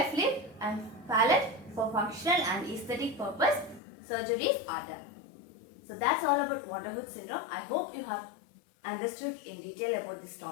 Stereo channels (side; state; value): right; drops out; at 3.8 s